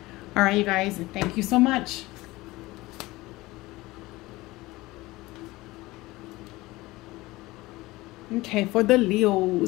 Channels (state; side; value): quieter; right; 19.8 dB